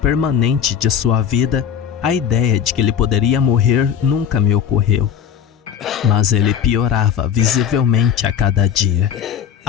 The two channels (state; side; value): quieter; right; 8.4 dB